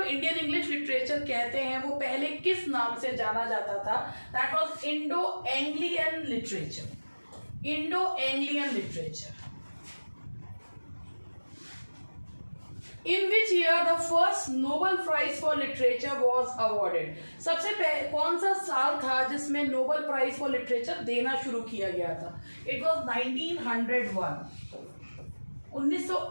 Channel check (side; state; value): both; inverted; correlation -1.00